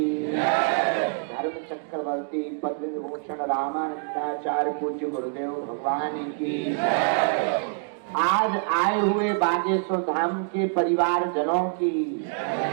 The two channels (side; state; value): left; silent; digital silence